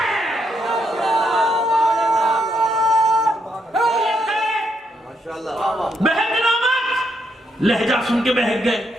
بہک نامت لہجہ سن کے بہک گئے.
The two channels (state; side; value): normal; both; correlation 0.77